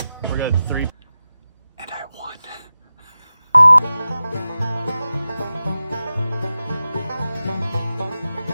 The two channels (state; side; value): inverted; both; correlation -0.93